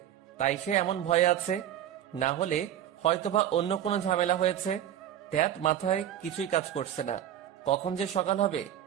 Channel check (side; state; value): left; quieter; 10.9 dB